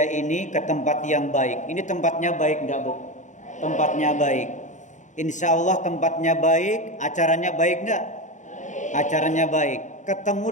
ini, ke tempat yang baik. Ini tempatnya baik enggak Bu? Tempatnya baik. Insya Allah tempatnya baik. Acaranya baik enggak? Acaranya baik. Ketemu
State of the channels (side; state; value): right; late; 0.36 ms